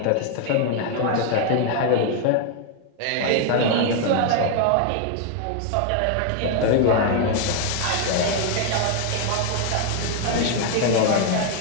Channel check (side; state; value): both; different; correlation 0.00